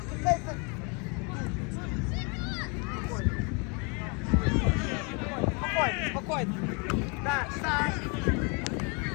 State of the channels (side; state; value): right; quieter; 33.1 dB